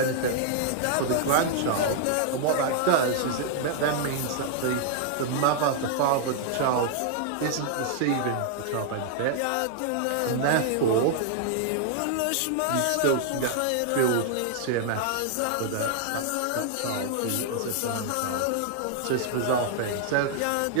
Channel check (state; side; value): different; both; correlation 0.00